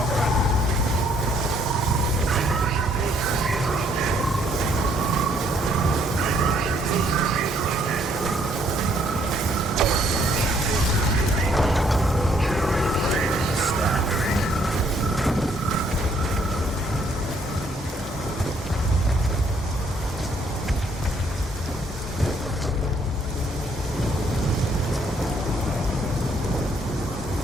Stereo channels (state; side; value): normal; both; correlation 0.67